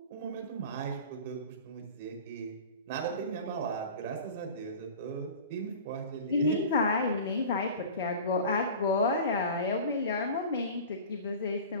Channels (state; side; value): inverted; both; correlation -0.37